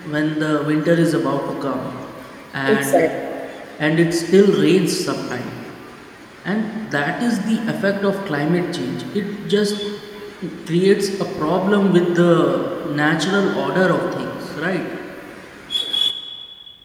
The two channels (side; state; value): both; identical; correlation 1.00